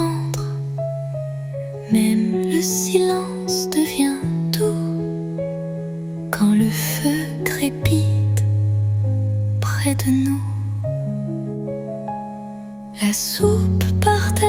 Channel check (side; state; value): both; identical; correlation 1.00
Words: Même le silence devient doux quand le feu crépite près de nous. La soupe